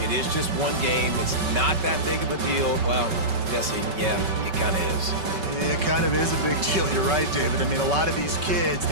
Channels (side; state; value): left; late; 5.3 ms